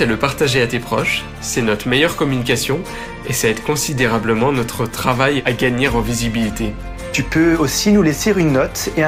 à le partager à tes proches. C'est notre meilleure communication et ça aide considérablement notre travail à gagner en visibilité. Tu peux aussi nous laisser une note et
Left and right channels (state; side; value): identical; both; correlation 1.00